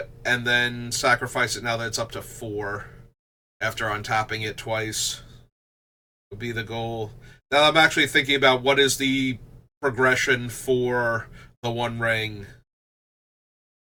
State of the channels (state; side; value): identical; both; correlation 1.00